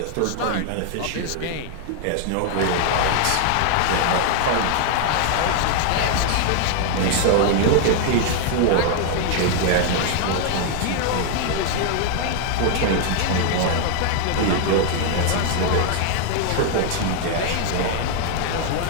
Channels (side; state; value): both; different; correlation 0.00